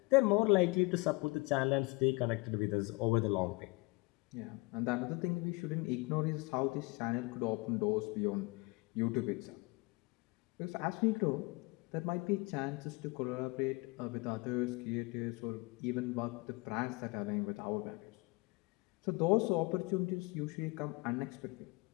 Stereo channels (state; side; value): quieter; right; 25.9 dB